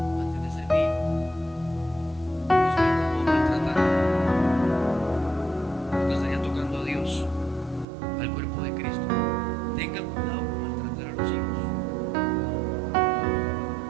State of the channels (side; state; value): left; drops out; at 7.9 s